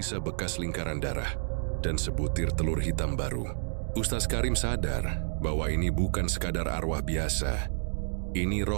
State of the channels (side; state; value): left; silent; digital silence